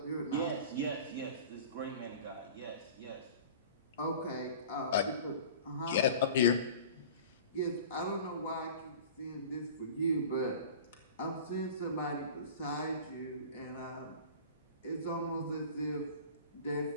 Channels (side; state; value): both; inverted; correlation -0.40